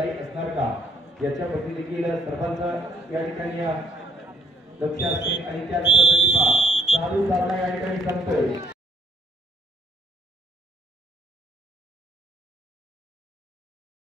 असणार का याच्यावरती देखील सर्वांचं या ठिकाणी लक्ष असते आणि त्याच पद्धतीने चालू सामना या ठिकाणी संपतोय.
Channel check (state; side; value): normal; both; correlation 0.63